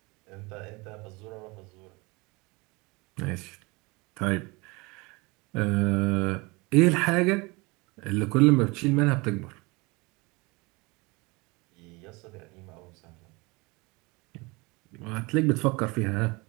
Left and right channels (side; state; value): left; quieter; 25.8 dB